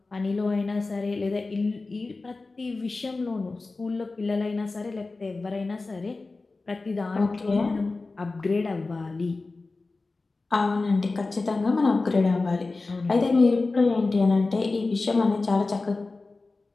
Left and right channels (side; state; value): right; quieter; 3.6 dB